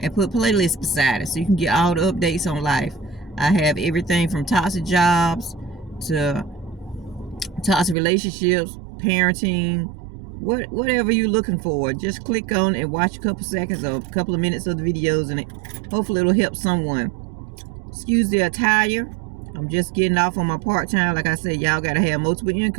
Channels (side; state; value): left; drops out; at 8.0 s